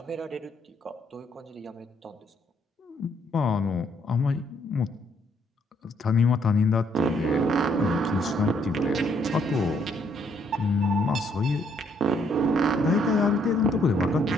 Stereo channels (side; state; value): both; normal; correlation 0.69